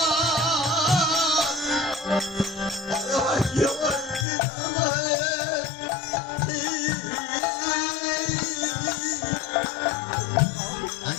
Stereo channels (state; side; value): drops out; right; at 4.2 s